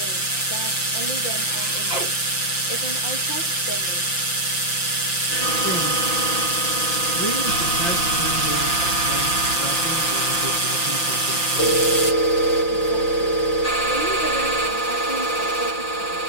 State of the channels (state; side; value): late; right; 5.8 ms